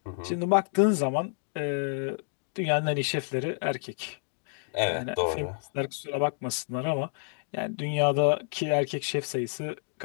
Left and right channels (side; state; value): right; silent; digital silence